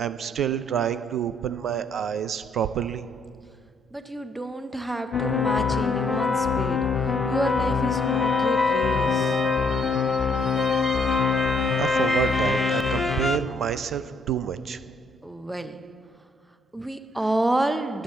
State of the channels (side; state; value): both; normal; correlation 0.69